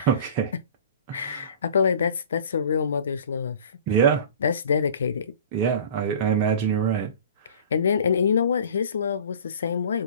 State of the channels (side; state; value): both; inverted; correlation -0.43